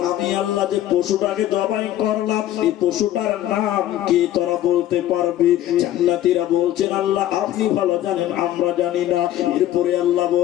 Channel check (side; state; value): right; quieter; 12.9 dB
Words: আমি আল্লাহ যে পশুটাকে জবাই করলাম, এই পশুটার নাম কি তোরা বলতে পারবি? জান্নাতীরা বলছেন, আল্লাহ আপনি ভালো জানেন, আমরা জানি না। এরপরে আল্লাহ